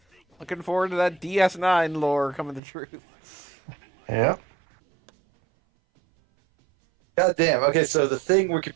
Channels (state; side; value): drops out; left; at 2.6 s